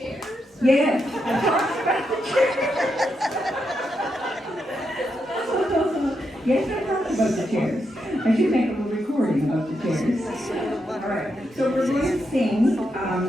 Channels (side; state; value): both; normal; correlation 0.83